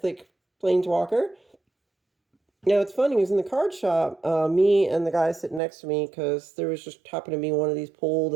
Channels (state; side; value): drops out; left; at 5.6 s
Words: Planeswalker. Now, it's funny, it was in the card shop, me and the guy sitting next to me, because there was just happened to be one of these pulled,